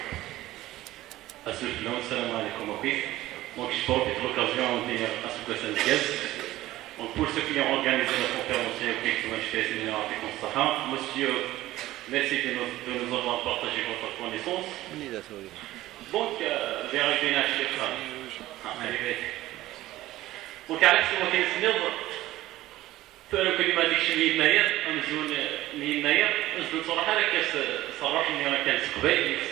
السلام عليكم وكيف donc je profite de l'occasion de dire à ce que ça nous guette. Donc pour ceux qui ont organisé la conférence monsieur, merci de nous avoir partagé votre connaissance. Donc j'ai arrivé à Donc على حسب ما كنسنض فأنا كل ما ديكش لي يناير أمزون لي يناير أمزون صراحة راه صراحة إني راه كانت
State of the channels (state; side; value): quieter; left; 16.0 dB